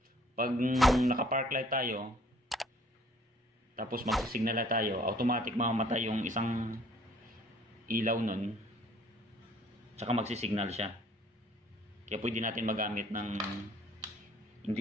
Pag naka-park light tayo, tapos mag-signal light tayo, automatic mamamatay yung isang ilaw nun, tsaka magsisignal siya. Kaya pwede natin magamit ng hindi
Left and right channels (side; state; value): both; normal; correlation 0.58